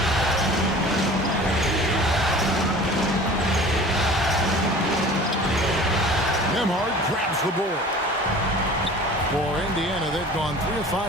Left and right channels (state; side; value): normal; both; correlation 0.43